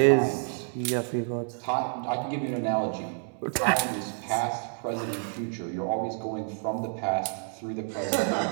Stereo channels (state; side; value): silent; left; 59 dB below the other